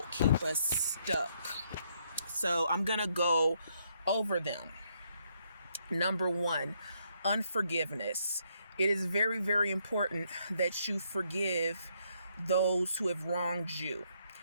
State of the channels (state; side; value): inverted; both; correlation -0.73